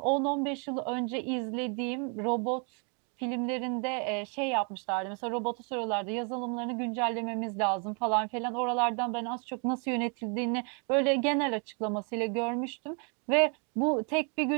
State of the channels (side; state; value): left; quieter; 37.6 dB